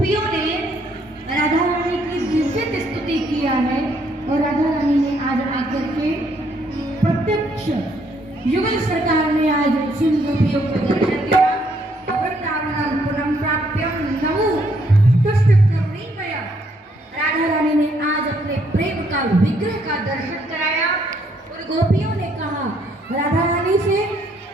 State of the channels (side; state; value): both; normal; correlation 0.70